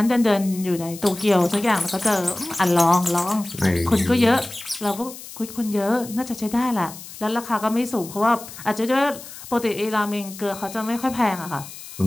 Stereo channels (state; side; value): noise; left; hiss, 14 dB below the sound